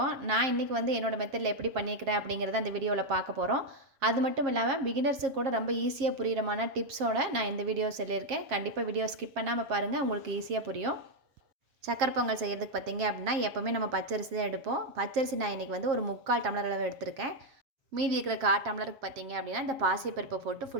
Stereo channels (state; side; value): late; left; 7.4 ms